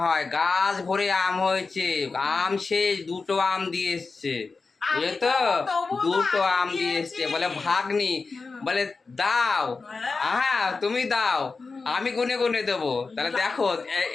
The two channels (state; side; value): quieter; right; 4.3 dB